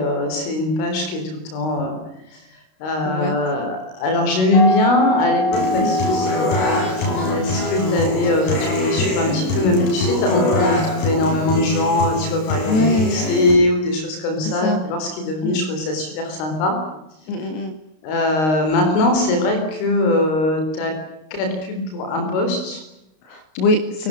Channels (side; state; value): right; late; 32 ms